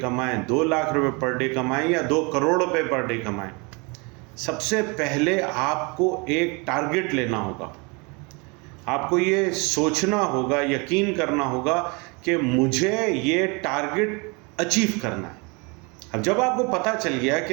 2 लाख रुपये पर डे कमाएँ या 2 करोड़ रुपये पर डे कमाएँ, सबसे पहले आपको एक टारगेट लेना होगा। आपको ये सोचना होगा, यकीन करना होगा कि मुझे ये टारगेट अचीव करना है। अब जब आपको पता चल गया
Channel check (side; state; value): left; quieter; 29.7 dB